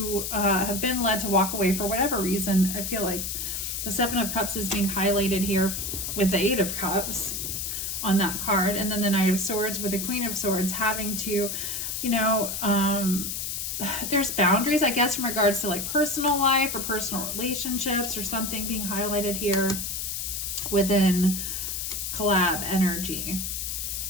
have been led to walk away for whatever reason. I feel like the Seven of Cups is being highlighted here with the Eight of Cups on that card. And then the Knight of Swords with the Queen of Swords having to, you know, there's boundaries, I guess, in regards to like personal life or personal relationships or something being highlighted here within collab energy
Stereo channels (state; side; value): noise; left; hiss, 3 dB below the sound